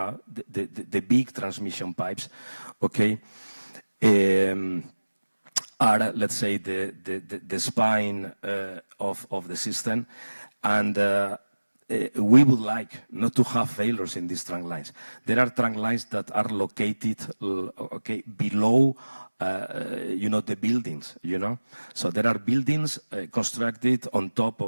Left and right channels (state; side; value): inverted; both; correlation -1.00